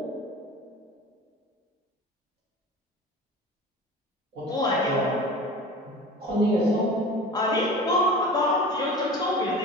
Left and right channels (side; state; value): both; normal; correlation 0.37